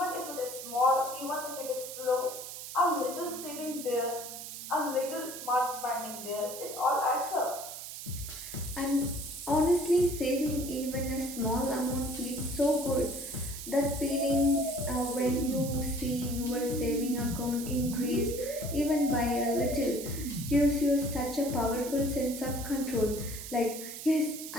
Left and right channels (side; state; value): right; noise; hiss, 9 dB below the sound